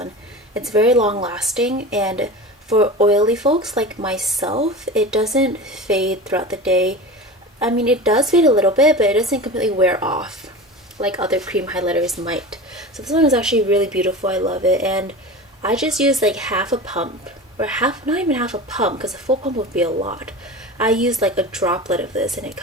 It's very long lasting, and for oily folks like myself, it doesn't fade throughout the day. I mean, it does fade a little bit, but it doesn't completely wear off like other cream highlighters might. So this one is actually really beautiful. I love it. And I just used like half a pump, or not even half a pump, because a full pump would be a lot. I used like a droplet of this and it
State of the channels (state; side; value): normal; both; correlation 0.31